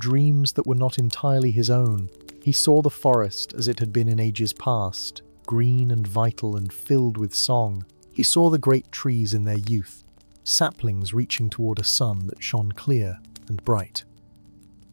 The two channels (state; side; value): inverted; both; correlation -1.00